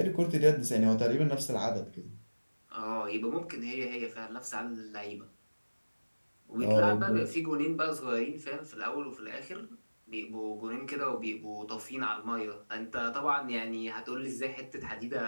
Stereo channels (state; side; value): inverted; both; correlation -1.00